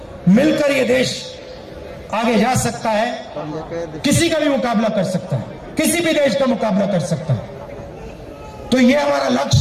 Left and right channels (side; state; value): both; identical; correlation 1.00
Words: मिलकर ये देश आगे जा सकता है, किसी का भी मुकाबला कर सकता है, किसी भी देश का मुकाबला कर सकता है। तो ये हमारा